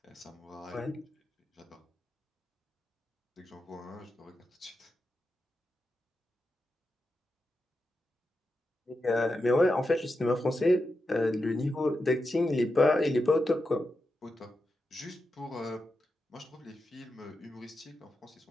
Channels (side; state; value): both; normal; correlation 0.88